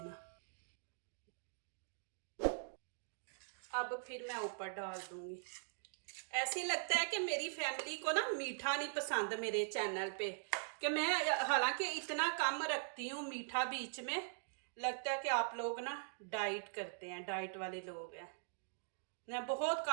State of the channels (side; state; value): left; silent; digital silence